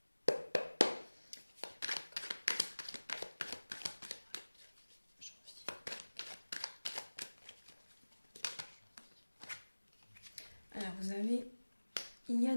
Alors, il y a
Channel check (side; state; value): both; inverted; correlation -1.00